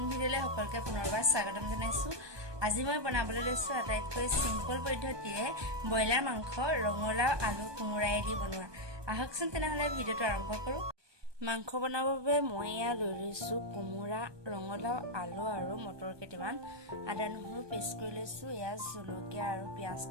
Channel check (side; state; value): left; late; 1.2 ms